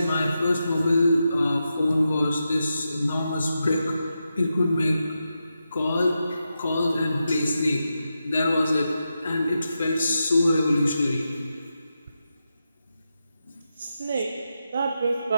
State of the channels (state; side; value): inverted; both; correlation -0.88